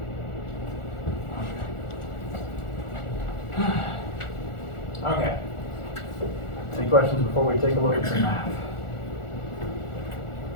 Okay. Any questions before we take a look at some math?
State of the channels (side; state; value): right; late; 1.4 ms